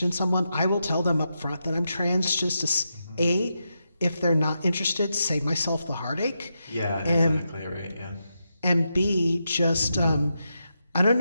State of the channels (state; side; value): inverted; both; correlation -0.85